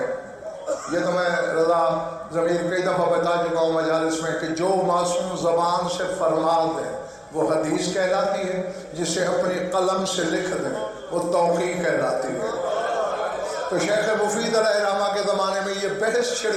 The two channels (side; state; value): both; identical; correlation 1.00